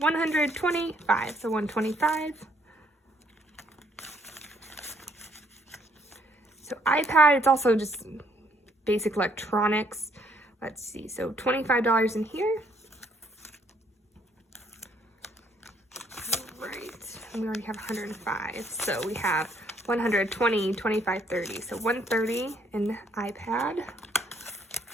so 125. So iPad, it's also just basic electronics. Let's see, so $25 in here. All right, and we already have 105, so we have 120, 25, 30. So 130 in iPad.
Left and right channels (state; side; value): normal; both; correlation 0.68